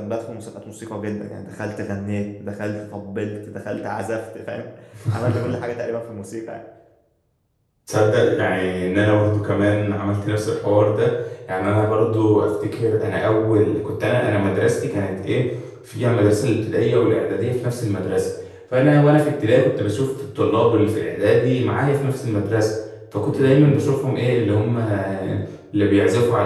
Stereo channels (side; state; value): both; identical; correlation 1.00